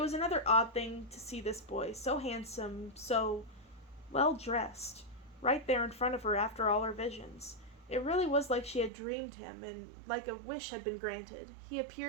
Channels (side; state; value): left; drops out; at 8.9 s